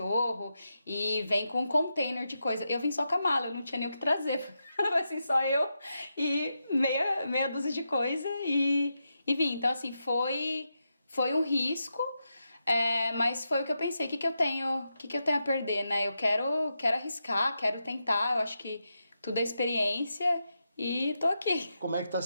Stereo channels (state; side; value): inverted; both; correlation -0.86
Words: e vem com um container de coisa. Eu vim só com a mala, eu não tinha nem o que trazer. Assim, só eu e meia dúzia de coisa e vim. Então, assim, foi um risco, mas foi o que eu pensei. O que eu tenho a perder, né? Eu quero arriscar, quero tentar. Eu acho que tudo é experiência e tô aqui. Como é que tá